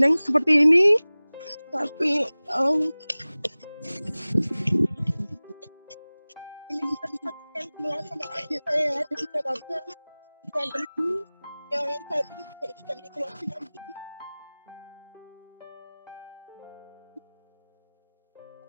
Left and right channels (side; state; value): both; inverted; correlation -0.99